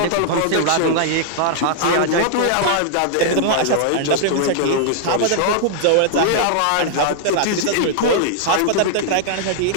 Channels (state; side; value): different; both; correlation -0.01